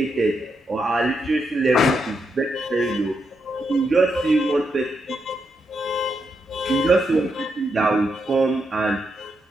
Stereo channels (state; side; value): normal; both; correlation 0.82